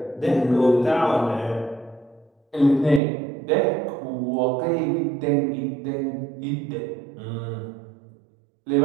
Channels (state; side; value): drops out; left; at 3.0 s